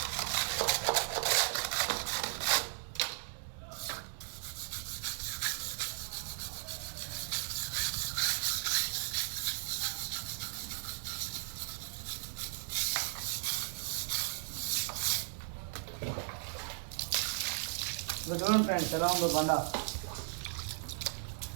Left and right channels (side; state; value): left; silent; digital silence